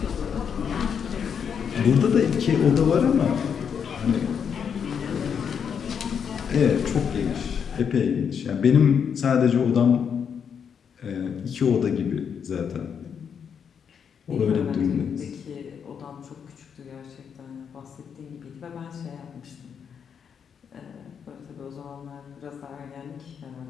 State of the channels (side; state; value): right; quieter; 7.3 dB